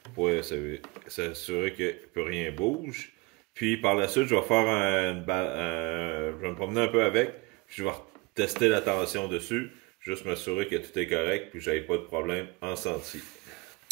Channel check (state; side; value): quieter; left; 25.1 dB